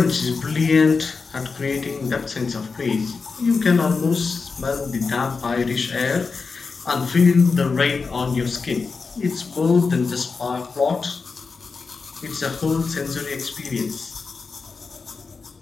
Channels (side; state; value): right; quieter; 4.7 dB